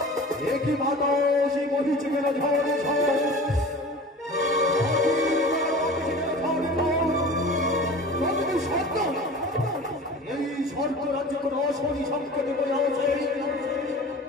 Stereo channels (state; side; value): normal; both; correlation 0.38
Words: একই বাতাসে বহিছে কেন ঝড়ে ঝড় সত্য